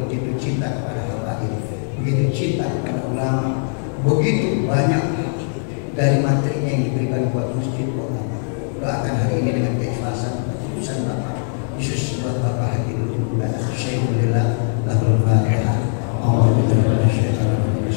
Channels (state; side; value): silent; right; 59 dB below the other